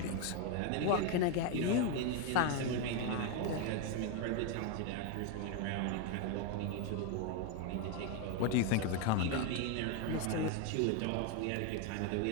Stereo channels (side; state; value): both; different; correlation 0.01